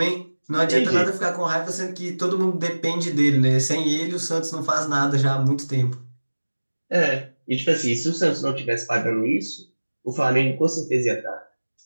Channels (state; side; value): inverted; both; correlation -1.00